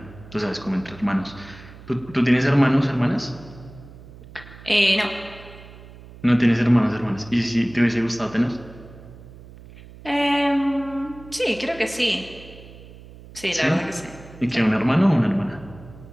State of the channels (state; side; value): noise; right; hum, 19 dB below the sound